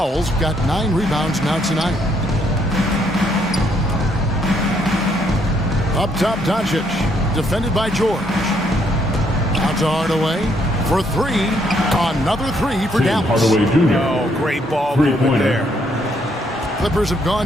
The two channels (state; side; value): normal; both; correlation 0.71